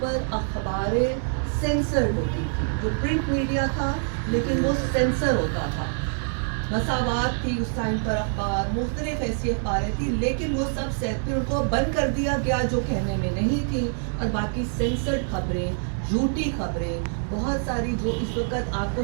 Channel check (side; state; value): left; silent; 61 dB below the other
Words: اخباریں سینسرڈ ہوتی تھی. جو پرنٹ میڈیا تھا لیکن وہ سینسر ہوتا تھا. مساوات تھی اس ٹائم پر, اخبار مختلف ایسی اخباریں تھی لیکن وہ سب پھر ان کو بند کر دیا گیا جو کہنے میں نہیں تھی, اور باقی سینسرڈ خبریں, جھوٹی خبریں بہت ساری جو اس وقت آپ کو